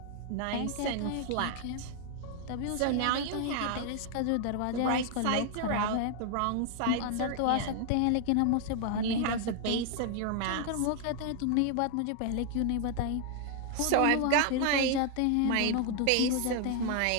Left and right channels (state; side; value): different; both; correlation 0.00